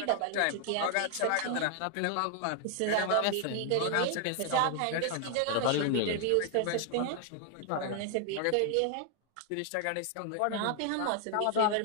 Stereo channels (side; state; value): both; different; correlation 0.00